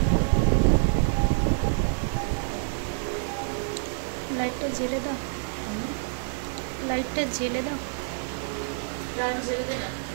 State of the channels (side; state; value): left; silent; digital silence